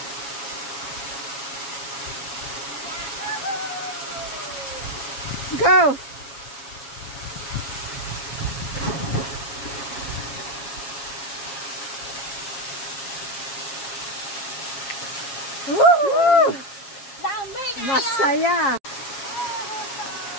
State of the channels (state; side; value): late; right; 7.3 ms